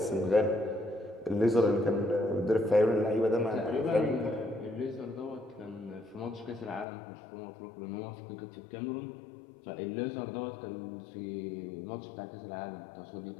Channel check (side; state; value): right; drops out; at 6.9 s